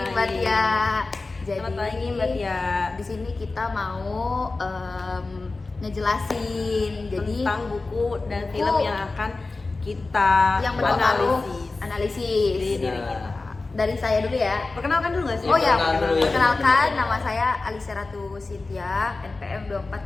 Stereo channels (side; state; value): right; quieter; 3.5 dB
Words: Mbak Tia. Selamat pagi, Mbak Tia. Di sini kita mau ngejelasin Tentang buku dan buku film yang akan kita yang berpengaruh analisis di analisis. diri kita. Dari saya dulu ya. Perkenalkan dulu nggak sih? Oh ya, perkenalkan dulu ya. perkenalkan nama saya Alisa Ratu Cynthia, NPM